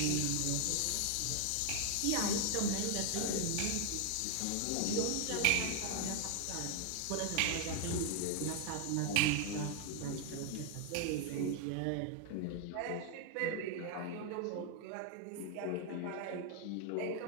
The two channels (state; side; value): different; both; correlation 0.00